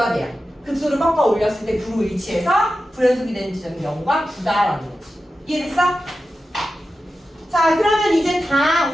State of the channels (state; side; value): normal; both; correlation 0.92